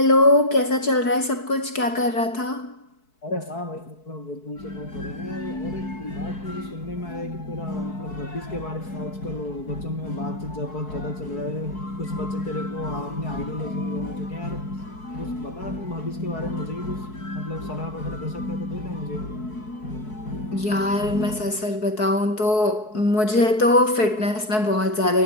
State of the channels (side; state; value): right; late; 4.6 ms